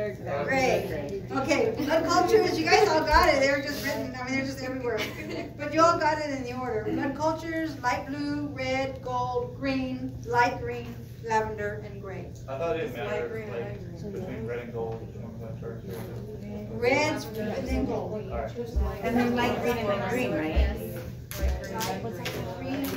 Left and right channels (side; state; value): both; identical; correlation 1.00